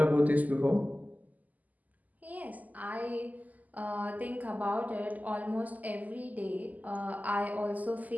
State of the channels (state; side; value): late; left; 0.079 ms